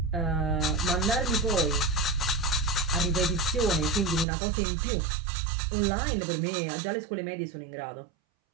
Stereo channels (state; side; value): drops out; left; at 4.2 s